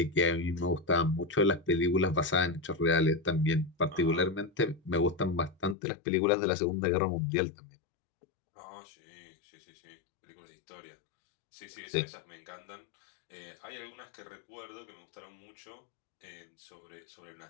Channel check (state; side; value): drops out; right; at 5.8 s